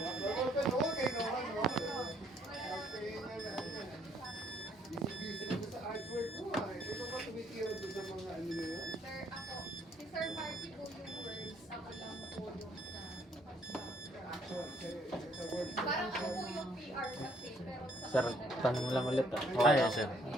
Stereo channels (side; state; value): both; normal; correlation 0.65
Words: Si Sir Marky po yung words, ako lang po yung parang ako po yung PR kasi, pero sa Sir, tanong lang ulit ah. Ah, yes, sir.